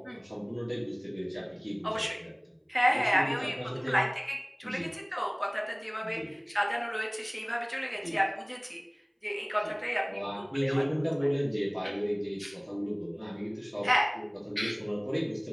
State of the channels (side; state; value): both; identical; correlation 1.00